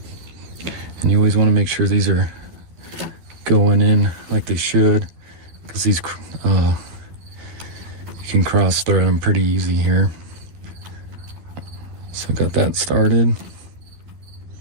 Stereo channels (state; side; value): late; left; 12 ms